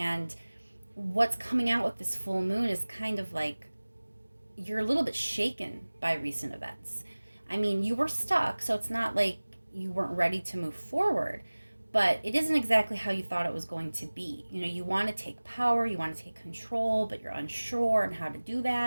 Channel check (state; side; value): inverted; both; correlation -1.00